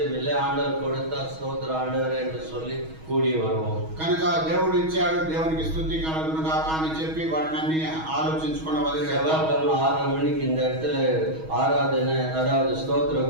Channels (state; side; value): late; left; 6.3 ms